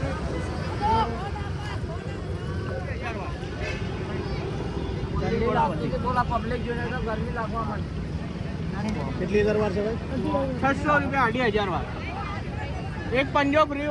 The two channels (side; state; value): both; identical; correlation 1.00